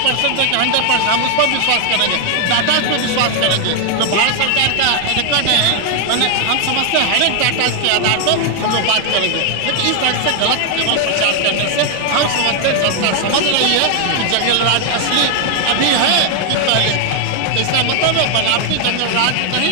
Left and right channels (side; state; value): both; different; correlation 0.00